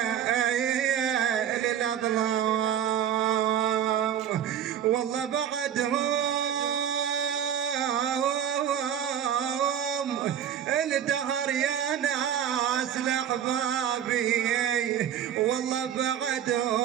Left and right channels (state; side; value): quieter; left; 9.5 dB